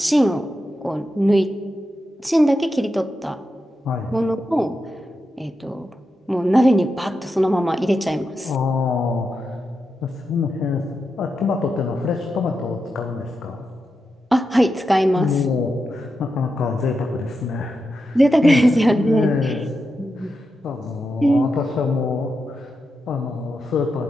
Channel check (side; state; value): both; normal; correlation 0.88